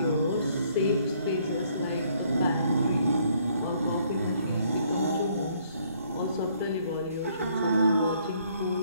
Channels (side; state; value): both; inverted; correlation -0.65